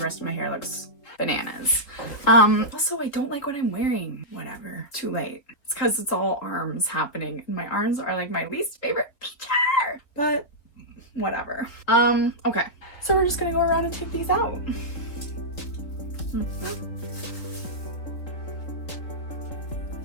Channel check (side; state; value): right; late; 3.6 ms